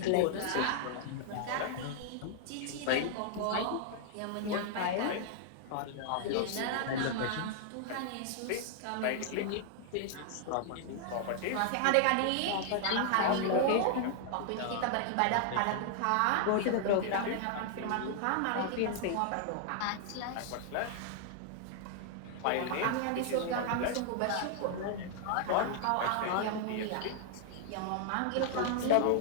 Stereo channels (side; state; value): both; different; correlation -0.01